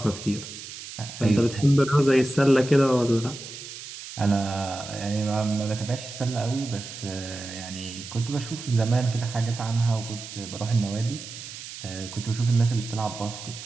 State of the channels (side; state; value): right; noise; hiss, 12 dB below the sound